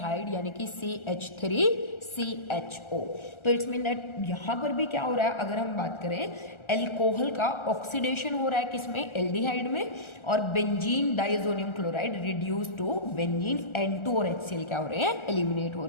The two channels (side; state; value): right; late; 1.4 ms